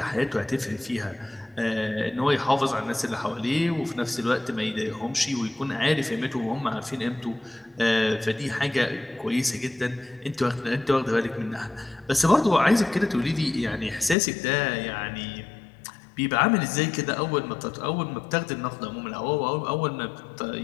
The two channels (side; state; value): right; drops out; at 14.2 s